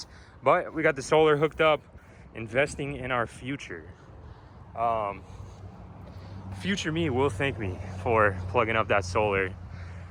but we got the solar hooked up, investing in our future. Future me will thank me for plugging up that solar.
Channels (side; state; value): both; identical; correlation 1.00